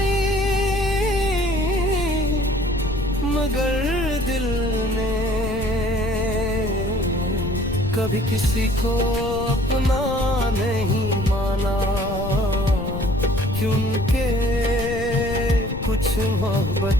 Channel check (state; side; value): noise; left; rumble, 7 dB below the sound